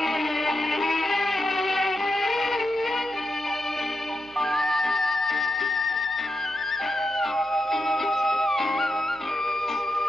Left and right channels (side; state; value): right; noise; hum, 26 dB below the sound